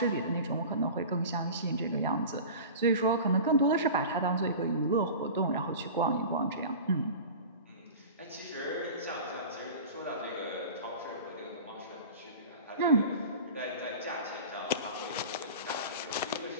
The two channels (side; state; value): both; inverted; correlation -0.35